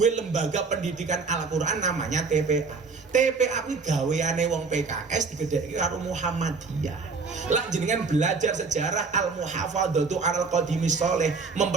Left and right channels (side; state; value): left; quieter; 4.5 dB